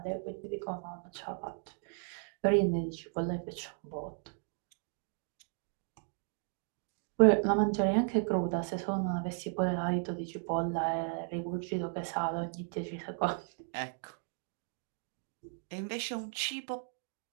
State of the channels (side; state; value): left; silent; 54 dB below the other